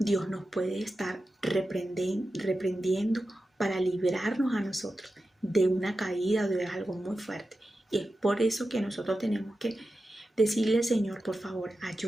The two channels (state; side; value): normal; both; correlation 0.92